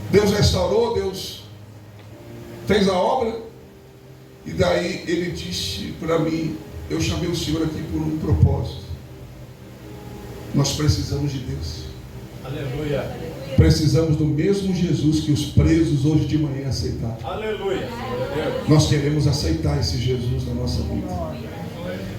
Deus restaurou, Deus fez a obra. E daí ele disse para mim, eu chamei o Senhor aqui por um propósito. Nós precisamos de Deus. Aleluia. Precisamos do mesmo Jesus que os presos hoje de manhã aceitaram. Aleluia. Nós queremos aceitar esse Jesus na nossa vida.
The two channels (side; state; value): both; identical; correlation 1.00